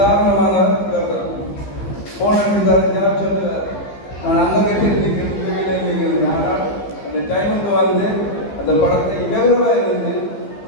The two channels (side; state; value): right; late; 15 ms